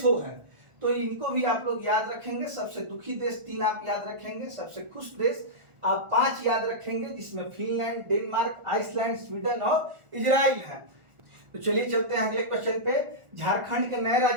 है। तो इनको भी आप लोग याद रखेंगे। सबसे दुखी देश 3 आप याद रखेंगे, सबसे खुश देश आप 5 याद रखेंगे, जिसमें फिनलैंड, डेनमार्क, आइसलैंड, स्वीडन और इजराइल है। तो चलिए चलते हैं अगले क्वेश्चन पे। झारखंड के नए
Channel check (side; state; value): left; late; 1.4 ms